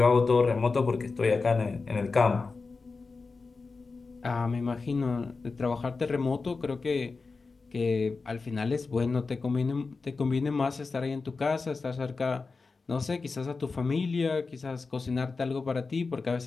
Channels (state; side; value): quieter; right; 4.2 dB